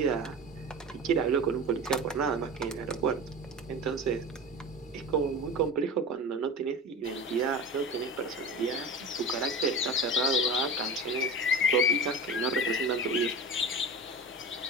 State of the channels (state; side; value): normal; both; correlation 0.31